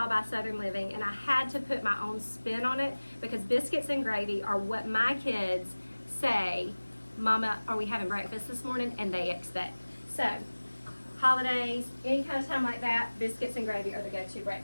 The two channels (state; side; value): inverted; both; correlation -1.00